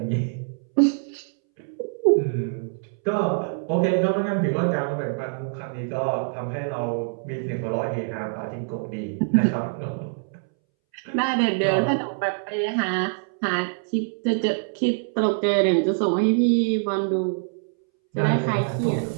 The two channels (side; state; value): left; silent; 62 dB below the other